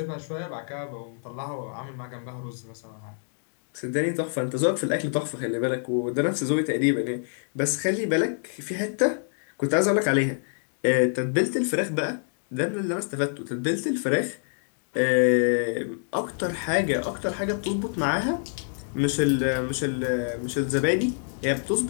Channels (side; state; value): right; silent; digital silence